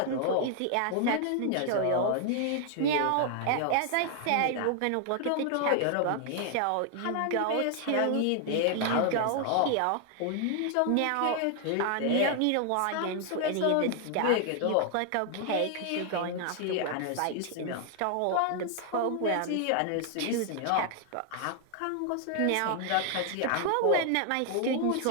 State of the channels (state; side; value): different; both; correlation 0.00